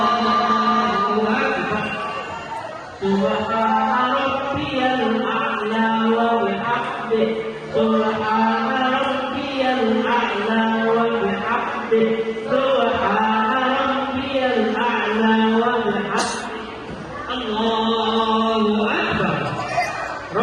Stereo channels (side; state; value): both; identical; correlation 1.00